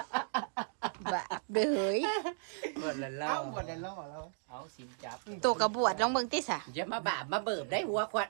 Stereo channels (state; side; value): silent; left; digital silence